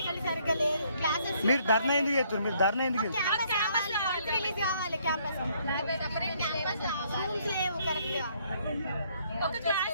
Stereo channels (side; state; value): both; inverted; correlation -0.67